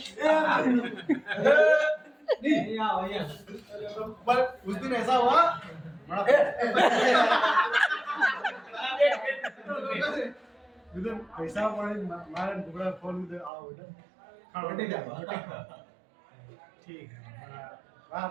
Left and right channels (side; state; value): left; drops out; at 13.5 s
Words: पर उस दिन ऐसा हुआ पैसा मारे टुकड़ा फोन में आओ ठीक है